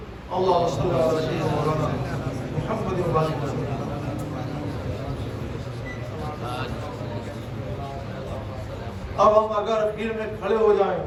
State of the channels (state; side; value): identical; both; correlation 1.00